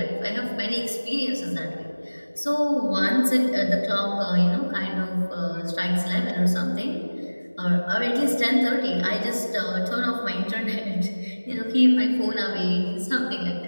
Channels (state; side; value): inverted; both; correlation -1.00